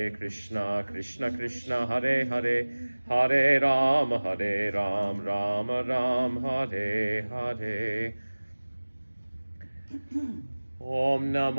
Krishna Krishna, Hare Hare, Hare Ram, Ram Ram, Hare Hare. Om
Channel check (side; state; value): both; inverted; correlation -1.00